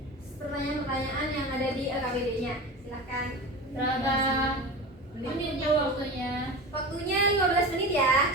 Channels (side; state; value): both; normal; correlation 0.29